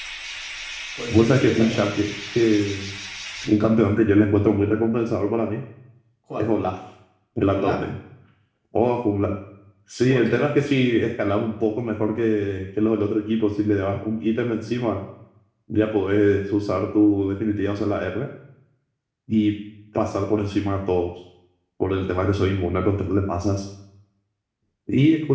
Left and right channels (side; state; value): both; identical; correlation 1.00